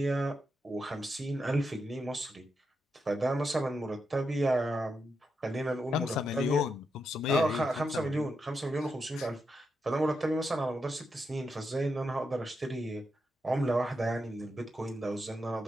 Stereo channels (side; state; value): both; normal; correlation 0.85